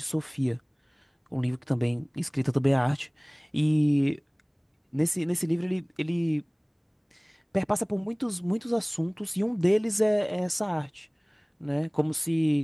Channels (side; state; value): both; identical; correlation 1.00